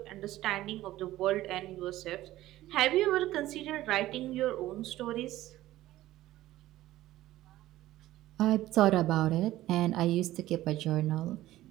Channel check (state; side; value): quieter; left; 15.5 dB